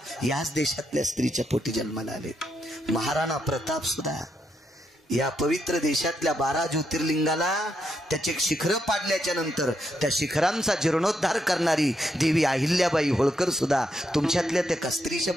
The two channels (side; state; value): both; normal; correlation 0.79